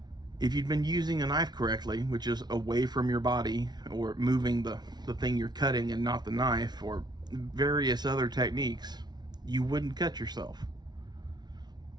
If you'd been using a knife correctly, which is away from your body, or moving the thing you're cutting and not the knife, or various other techniques, you wouldn't cut yourself.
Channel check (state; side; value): late; left; 0.20 ms